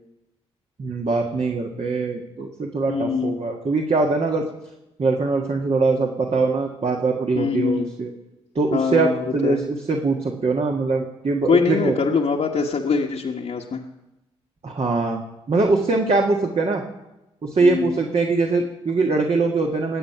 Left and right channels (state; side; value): normal; both; correlation 0.68